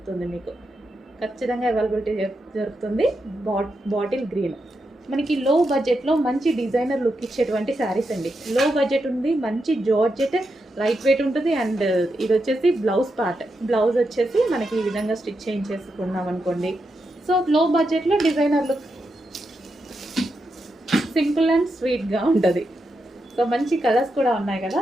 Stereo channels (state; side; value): normal; both; correlation 0.85